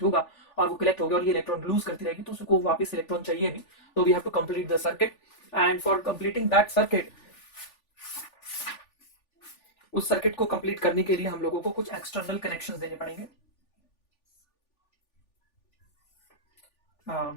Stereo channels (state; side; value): late; right; 3.4 ms